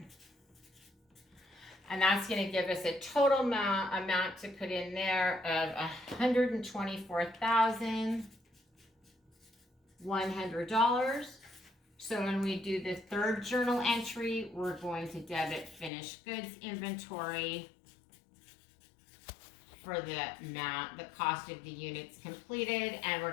And that's going to give us a total amount to put in there of $124,100. So when we do the third journal entry, we're going to debit finished goods inventory for the cost of the units completed, and we're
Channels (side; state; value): right; drops out; at 15.9 s